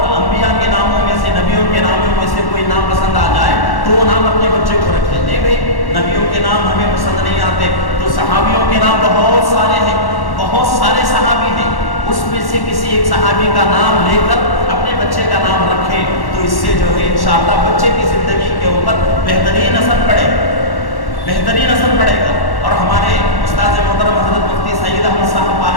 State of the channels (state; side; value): late; right; 1.1 ms